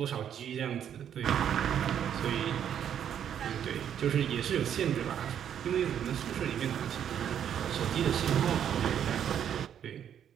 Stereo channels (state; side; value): quieter; left; 9.3 dB